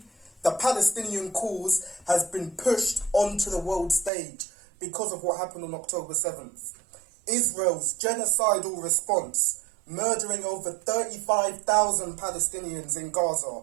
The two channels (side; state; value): left; drops out; at 4.1 s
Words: the Palestinian cause has been pushed onto the world stage because of what happened on October 7th. Israel's genocidal response, murdering over 35,000 Palestinians in Gaza,